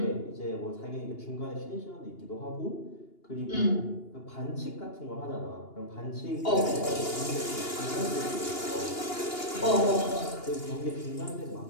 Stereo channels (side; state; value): right; late; 2.8 ms